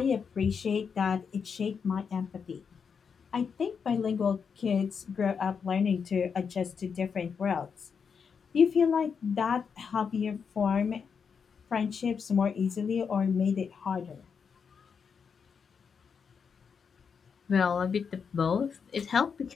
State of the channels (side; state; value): right; quieter; 6.3 dB